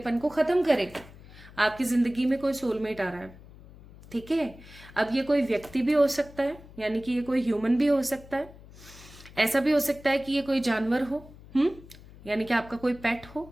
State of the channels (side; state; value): left; noise; hum, 20 dB below the sound